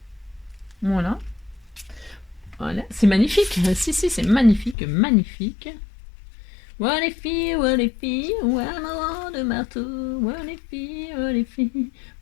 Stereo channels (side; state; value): right; drops out; at 4.8 s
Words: Voilà. Voilà, c'est magnifique. Si, c'est magnifique, magnifique. Ouais les filles, ouais maman de marteau. Ouais les filles,